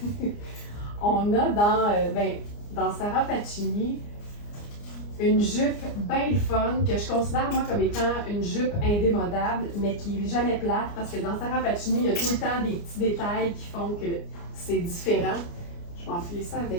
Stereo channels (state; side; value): late; right; 29 ms